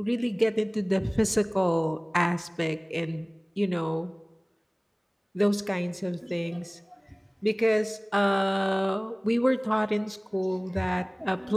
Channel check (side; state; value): both; identical; correlation 1.00